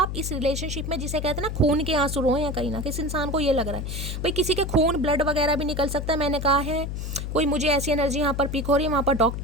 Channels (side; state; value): left; noise; hum, 5 dB below the sound